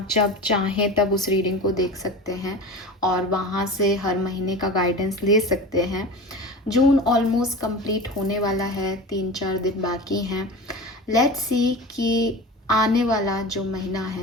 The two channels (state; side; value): normal; both; correlation 0.32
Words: जब चाहें तब उस रीडिंग को देख सकते हैं और वहाँ से हर महीने का गाइडेंस ले सकते हैं। जून ऑलमोस्ट कंप्लीट होने वाला है, 3-4 दिन बाकी हैं। लेट्स सी कि आने वाला जो महीना